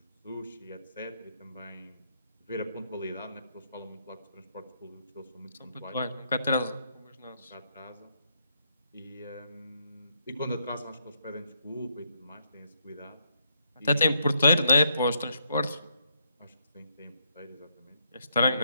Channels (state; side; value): inverted; both; correlation -0.75